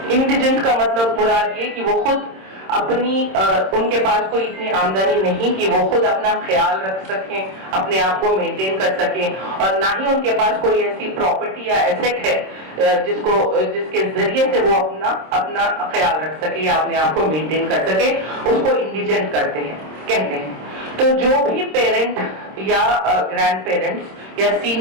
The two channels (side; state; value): left; late; 26 ms